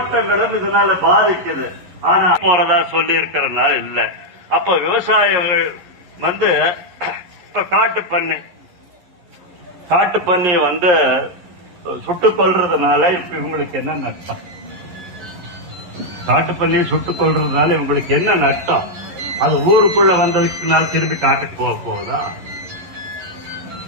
இதனால பாதிக்குது. ஆனா போறதா சொல்லி இருக்கிறனால இல்ல. அப்ப விவசாயிகள் இப்ப காட்டு பண்ணி சுட்டுக் கொள்றதுனால இப்ப இவங்களுக்கு என்ன நஷ்டம்? காட்டு பண்ணியை சுட்டுக் கொள்றதுனால இவங்களுக்கு என்ன நஷ்டம்? அது ஊருக்குள்ள வந்ததுக்குனால திரும்பி காட்டுக்கு போக போகுதா?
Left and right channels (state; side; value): late; left; 11 ms